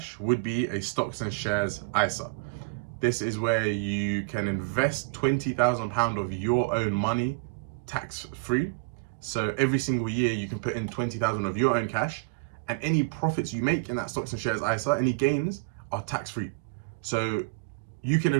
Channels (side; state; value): left; quieter; 32.1 dB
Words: would be a stocks and shares ISA. This is where you can invest £20,000 of your own money tax-free. So every single year you can put in 20,000 of your own cash, and any profits you make in that stocks and shares ISA, any gains, are tax-free. So you can